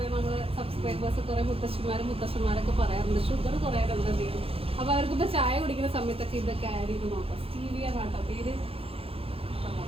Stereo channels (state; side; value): late; left; 0.27 ms